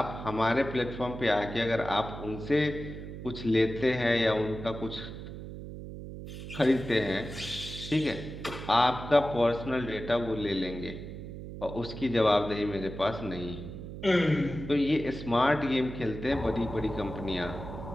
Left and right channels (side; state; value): right; noise; hum, 10 dB below the sound